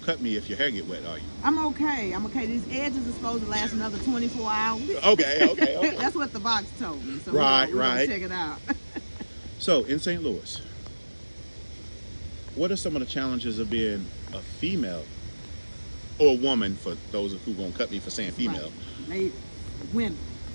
me if your hair get wet, are you? I'm okay. These edges are supposed to last another 24 hours. Okay. That's what the box told me. So Right, we're gonna right. check it out. So, in St. Louis, what are some of the challenges of being a female or a woman, for those who gonna cut me for saying female? Right. Ladies, women.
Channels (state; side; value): inverted; both; correlation -1.00